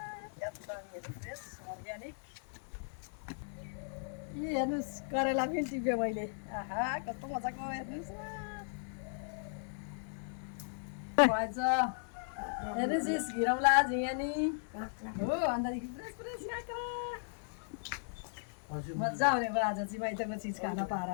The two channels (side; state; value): right; silent; digital silence